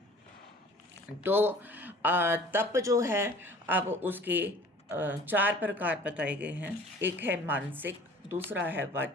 तो तप जो है, अब उसके 4 प्रकार बताए गए हैं। एक है मानसिक, दूसरा है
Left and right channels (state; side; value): normal; both; correlation 0.47